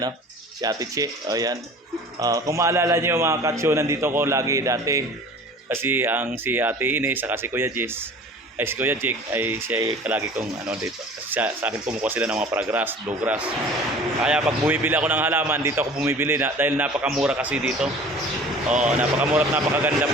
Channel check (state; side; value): normal; both; correlation 0.44